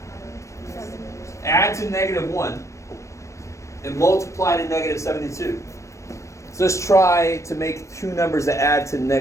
Add to -1 and multiply to -72. So let's try to make 2 numbers that add to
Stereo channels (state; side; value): late; right; 0.15 ms